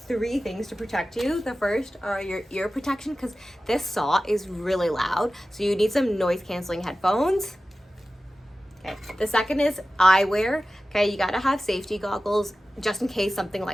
things to protect you. The first are your ear protection, because this saw is really loud, so you need some noise canceling headphones. Okay, the second is eyewear. Okay, you gotta have safety goggles just in case something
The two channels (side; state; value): both; normal; correlation 0.95